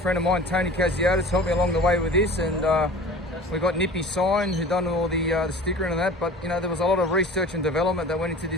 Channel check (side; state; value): both; normal; correlation 0.40